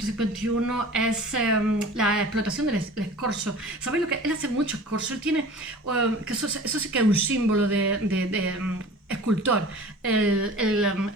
es la explotación del escorzo. ¿Sabéis lo que? Él hace mucho escorzo. Él tiene, que eso sí que es un símbolo de escultor.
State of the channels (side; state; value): both; normal; correlation 0.41